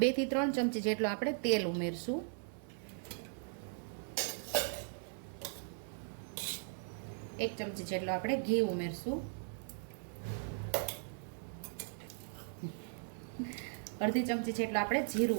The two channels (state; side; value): silent; left; 52 dB below the other